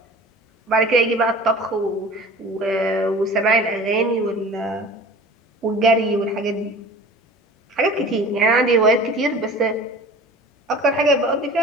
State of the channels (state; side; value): normal; both; correlation 0.42